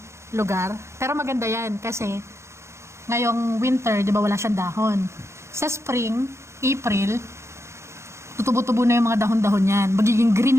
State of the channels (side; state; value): left; late; 0.13 ms